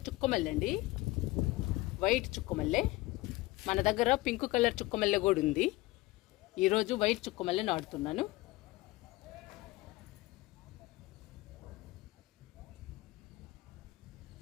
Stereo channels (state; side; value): quieter; right; 19.7 dB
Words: చుక్కమల్లె అండి, వైట్ చుక్కమల్లె. మన దగ్గర పింక్ కలర్ చుక్కమల్లె కూడా ఉంది. ఈరోజు వైట్ చుక్కమల్లె నాటుతున్నాను.